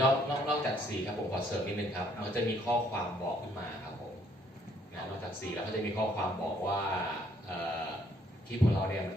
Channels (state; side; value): normal; both; correlation 0.66